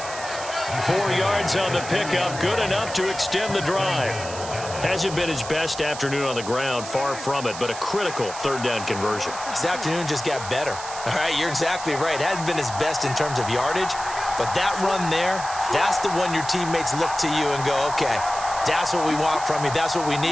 4 yards on the pickup, good enough to extend the drive. Hasn't been his best afternoon on the ground, far from it, but a critical 3rd down conversion. This afternoon just got better. All right, you're exactly right. It hasn't been his best in terms of yardage, but that run there, that's the one your teammates look to you and go, okay, that's what we want from you. That's what we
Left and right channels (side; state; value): right; noise; hiss, 11 dB below the sound